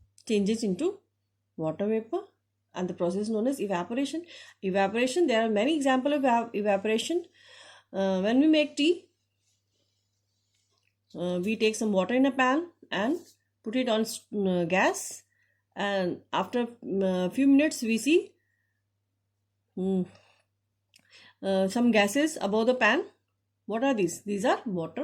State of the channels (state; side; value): identical; both; correlation 1.00